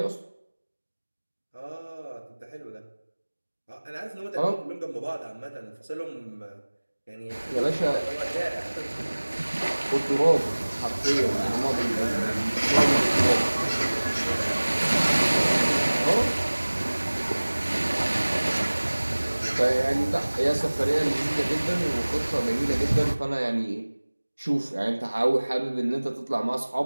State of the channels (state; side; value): inverted; both; correlation -1.00